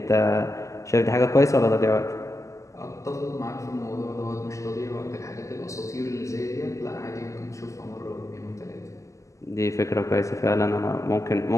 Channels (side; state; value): right; late; 0.15 ms